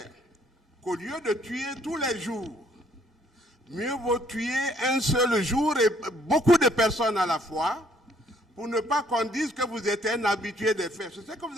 qu'au lieu de tuer tous les jours, mieux vaut tuer un seul jour et beaucoup de personnes à la fois pour ne pas qu'on dise que vous êtes un habitué des faits. C'est ce que vous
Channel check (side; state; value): both; normal; correlation 0.64